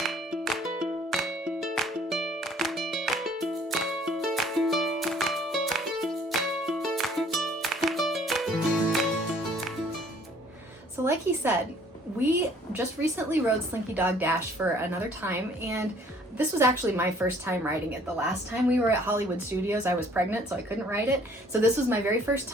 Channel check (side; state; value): both; normal; correlation 0.58